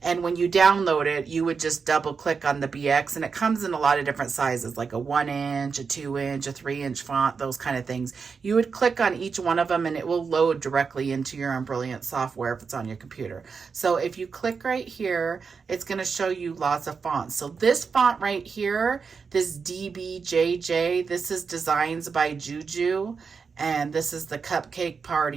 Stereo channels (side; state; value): left; quieter; 5.4 dB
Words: And when you download it, you would just double click on the BX, and it comes in a lot of different sizes, like a 1-inch, a 2-inch, a 3-inch font, those kind of things. You would click on each one of them and it will load directly into your Embrilliance software if it's on your computer. So if you click right here, it's going to show you lots of fonts. So this font right here, this DBJJ, this is Designs by Juju, and this is the Cupcake